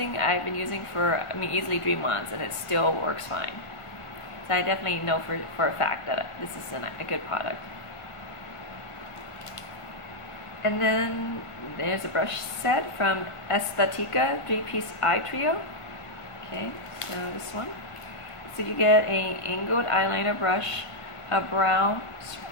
I've been using for, easily 3 months, and it still works fine. So I definitely know for a fact that this is a good product. And then there's a brush set from Aesthetica 3-piece eye trio. Okay, so this one. So you get a angled eyeliner brush, a brow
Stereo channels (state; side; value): late; right; 1.5 ms